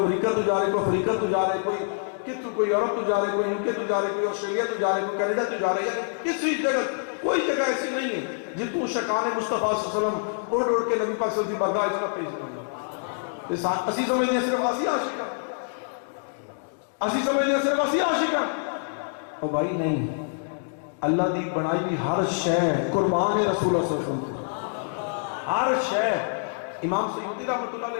امریکہ تو جا رہے کوئی افریقہ تو جا رہے کوئی کتوں کوئی یورپ تو جا رہے کوئی یوکے تو جا رہے کوئی آسٹریلیا تو جا رہے کوئی کینیڈا تو جا رہے یعنی کسی جگہ کوئی جگہ ایسی نہیں ہے جتوں شکان مصطفیٰ صلی اللہ علیہ وسلم اڑ اڑ کے نبی پاک صلی اللہ علیہ وسلم کی بارگاہ اجرا پیش کرنا اسی سمجھتے ہیں صرف اسی عاشق ہیں اسی سمجھتے ہیں صرف اسی عاشق ہیں اور بھائی نہیں اللہ دی بنائی بھی ہر شے قربان رسول اللہ صلی اللہ علیہ وسلم ہر شے امام سیوطی رحمۃ اللہ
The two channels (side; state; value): right; silent; digital silence